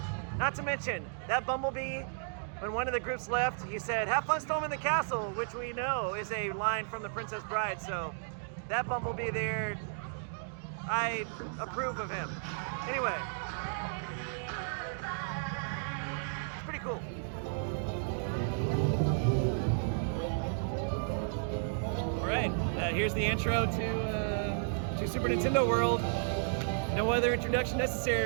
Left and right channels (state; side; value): silent; left; digital silence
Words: Not to mention, that Bumblebee, when one of the groups left, he said, "Have fun storming the castle," which we know is a line from The Princess Bride. So that Bumblebee there, I approve of him. Anyway, it's pretty cool. All right, here's the intro to Super Nintendo World. No other introduction